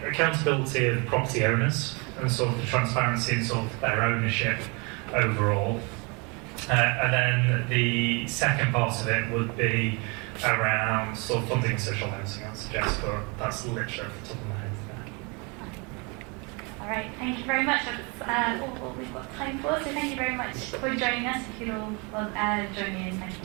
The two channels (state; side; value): quieter; left; 30.9 dB